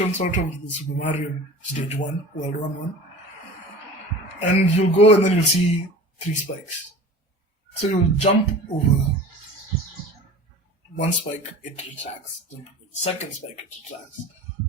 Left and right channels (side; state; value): both; normal; correlation 0.38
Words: sort of the Super Mario Stage 1, World 1. And you'll go and then you'll see 3 spikes. So you'll jump over one spike, it retracts. Jump over the second spike, it retracts.